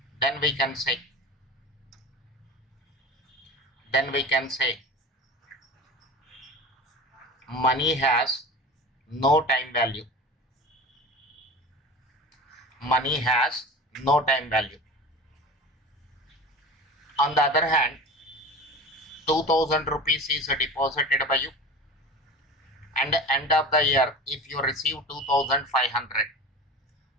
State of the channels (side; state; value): both; normal; correlation 0.33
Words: then we can say money has no time value. Money has no time value. On the other hand, 2000 rupees is deposited by you, and end of the year if you receive 2500.